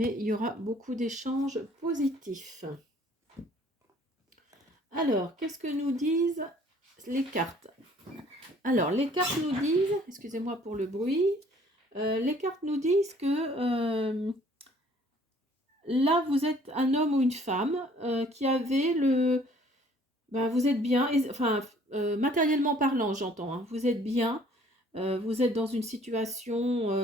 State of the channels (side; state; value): both; normal; correlation 0.57